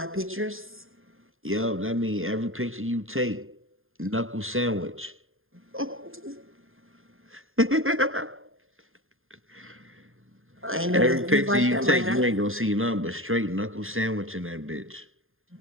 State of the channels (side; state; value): left; late; 0.60 ms